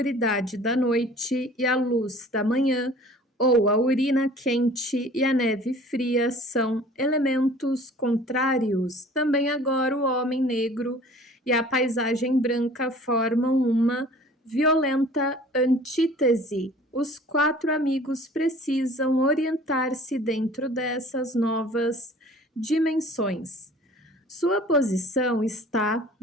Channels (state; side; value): normal; both; correlation 0.48